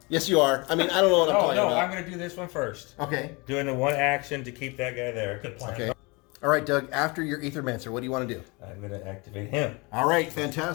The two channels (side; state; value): right; quieter; 27.7 dB